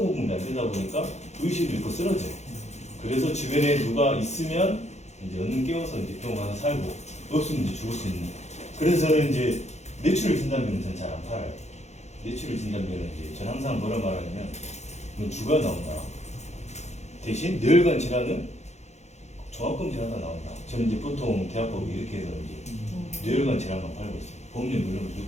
공급이 안 되다 보니까 의식을 잃고 쓰러져요. 그래서 주변에 누가 있으면 이제 얼른 깨워서 이제 병원 가서 살고 없으면 이제 죽을 수 있는. 그래서 저는 이제 뇌출혈 진단비는 전 잘 안 팔아요. 뇌출혈 진단비는 이제 전 항상 뭐라 말하냐면 이건 주가 나온다. 대신 뇌혈관 질환은 종합검 질환가 나온다. 저는 이제 보통 대학법이 이렇게 해서 이제 뇌혈관 질환만 팔고 있어요. 보험료 물론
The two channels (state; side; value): late; right; 0.33 ms